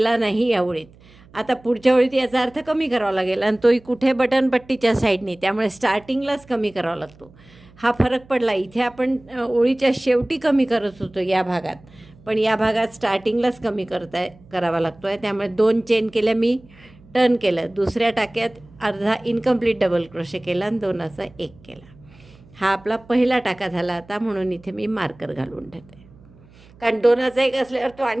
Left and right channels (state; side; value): noise; right; hum, 26 dB below the sound